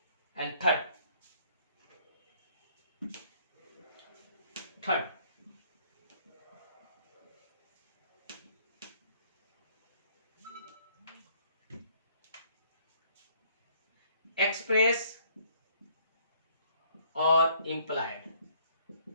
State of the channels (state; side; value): inverted; both; correlation -0.62